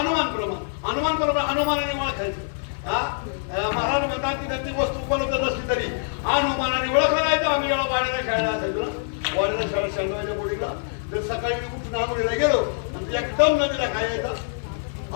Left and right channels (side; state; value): right; silent; 56 dB below the other